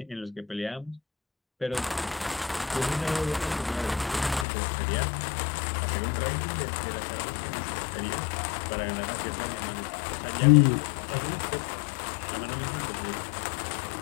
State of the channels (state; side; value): drops out; right; at 4.5 s